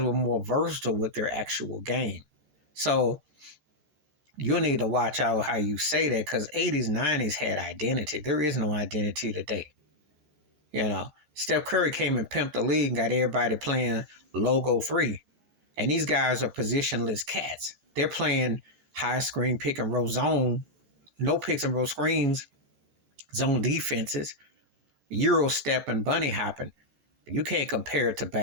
more versatile with their actual game. So you need to watch out how you say that because 80s, 90s had identity. There is no identity today. Steph Curry came and pimped the league and got everybody playing logo 3. And these guys are positionless cats. They're playing high screen, pick and roll zone, no picks and roll screens, zone defenses, Euro step and bunny hopping. You can't compare it to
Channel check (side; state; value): left; late; 13 ms